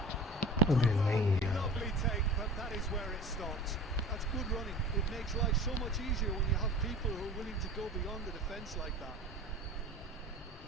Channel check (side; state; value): both; normal; correlation 0.37